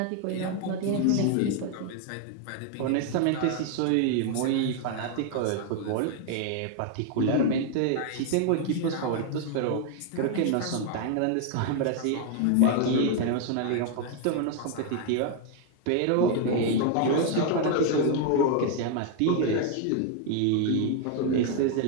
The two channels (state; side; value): different; both; correlation 0.00